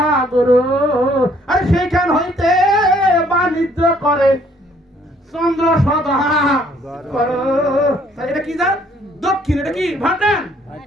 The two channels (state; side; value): normal; both; correlation 0.63